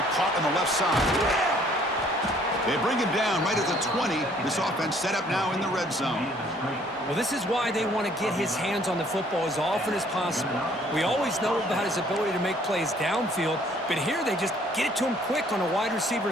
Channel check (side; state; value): both; normal; correlation 0.60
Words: caught on the left side. They bring him down right at the 20. This offense set up now in the red zone. Well, this is why they want to get his hands on the football as often as possible. We always know about his ability to make plays downfield, but here they just get it to him quick on a wide receiver